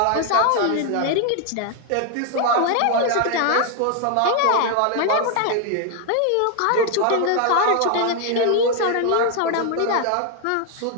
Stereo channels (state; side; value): different; both; correlation 0.00